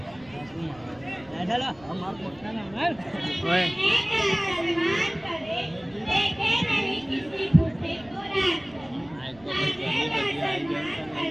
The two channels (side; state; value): right; noise; rumble, 25 dB below the sound